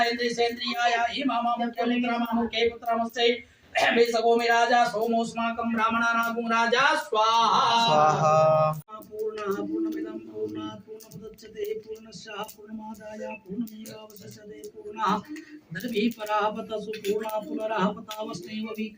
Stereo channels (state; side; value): identical; both; correlation 1.00